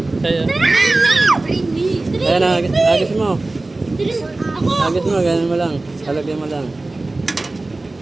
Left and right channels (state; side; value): quieter; left; 3.1 dB